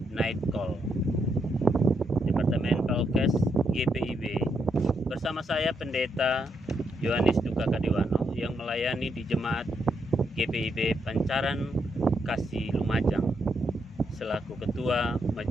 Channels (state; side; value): normal; both; correlation 0.79